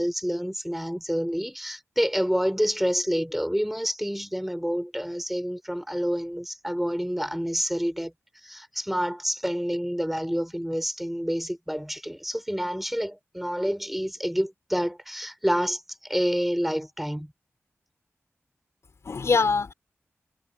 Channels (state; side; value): normal; both; correlation 0.95